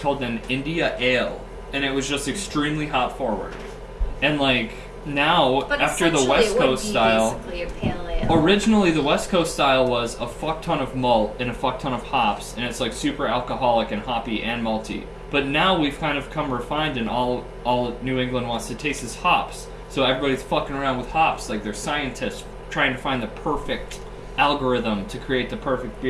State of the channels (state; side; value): identical; both; correlation 1.00